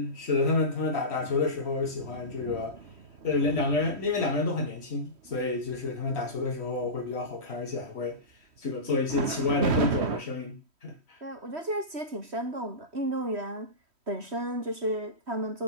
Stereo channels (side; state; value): left; late; 3.1 ms